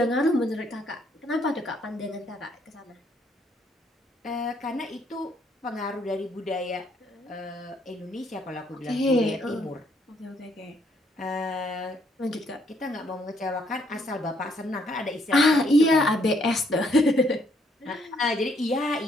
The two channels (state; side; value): normal; both; correlation 0.69